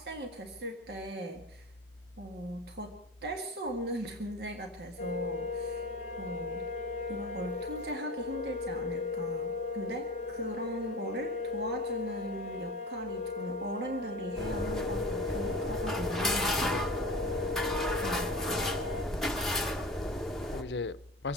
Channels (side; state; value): both; normal; correlation 0.33